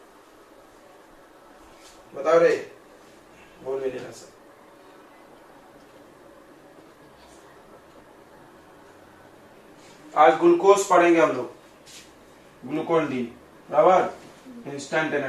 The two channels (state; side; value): identical; both; correlation 1.00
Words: बताओ रे, बोल भी नहीं रहा सर। आज ग्लूकोज पढ़ेंगे हम लोग, ग्लूकोन डी, बराबर, इंस्टेंट